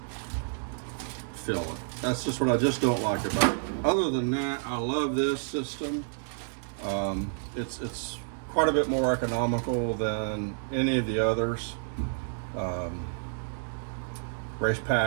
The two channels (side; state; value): left; silent; digital silence